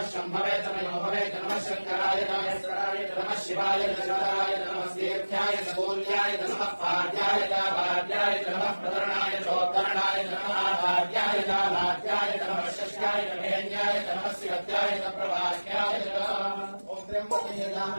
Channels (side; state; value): both; inverted; correlation -1.00